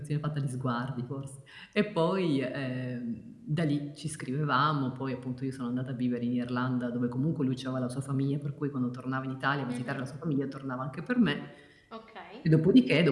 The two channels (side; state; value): both; identical; correlation 1.00